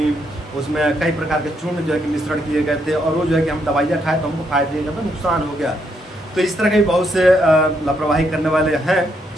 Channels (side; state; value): both; normal; correlation 0.76